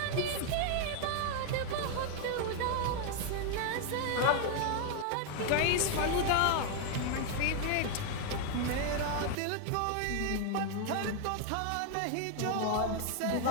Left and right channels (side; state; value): both; different; correlation 0.00